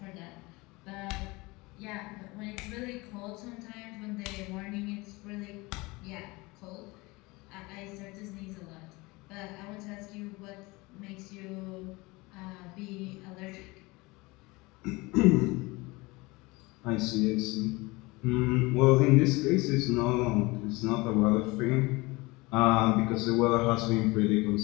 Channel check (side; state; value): right; quieter; 23.5 dB